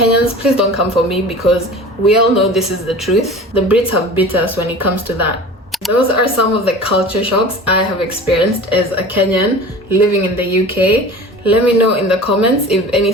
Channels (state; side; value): normal; both; correlation 0.38